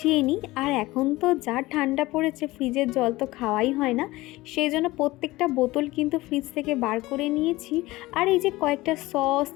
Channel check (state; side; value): quieter; right; 19.2 dB